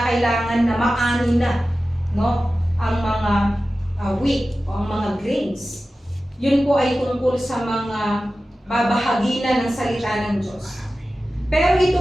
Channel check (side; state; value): both; normal; correlation 0.95